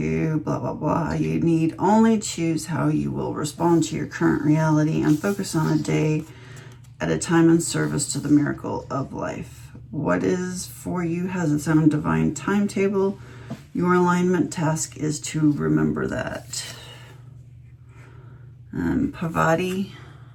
blah, blah, blah. You need only choose how you will respond to your current reality and focus on a day at a time in service to the miracle of life. What is for you has its own divine timetable. Your alignment task is to remember that. Pavati,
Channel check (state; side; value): identical; both; correlation 1.00